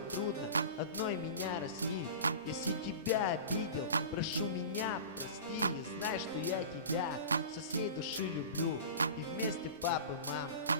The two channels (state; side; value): inverted; both; correlation -0.34